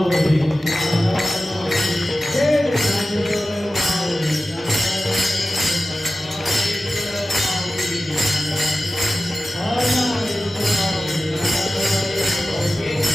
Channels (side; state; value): both; normal; correlation 0.95